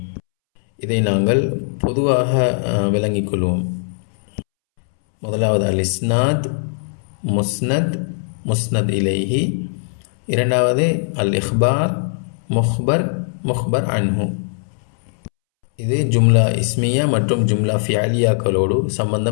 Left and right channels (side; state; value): right; silent; 66 dB below the other